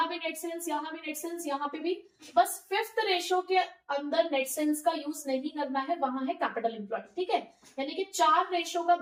भी नेट सेल्स, यहाँ भी नेट सेल्स, यहाँ पे भी। बस फिफ्थ रेशियो के अंदर नेट सेल्स का यूज नहीं करना है, वहां है कैपिटल एम्प्लॉयड। ठीक है, यानी कि 4 रेशियो का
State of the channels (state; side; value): identical; both; correlation 1.00